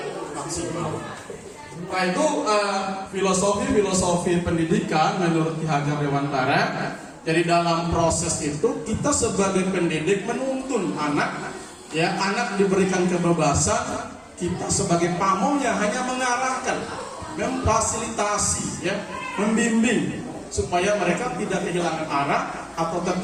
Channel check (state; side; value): identical; both; correlation 1.00